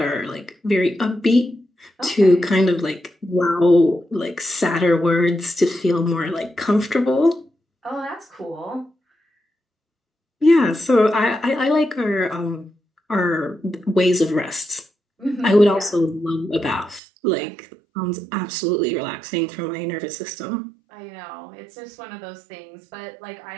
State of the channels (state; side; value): drops out; left; at 17.0 s